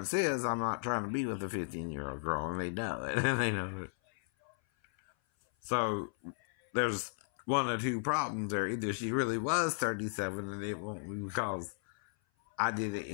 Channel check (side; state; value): right; silent; 55 dB below the other